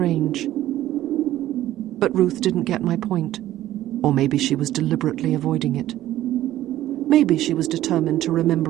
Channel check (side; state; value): left; quieter; 13.9 dB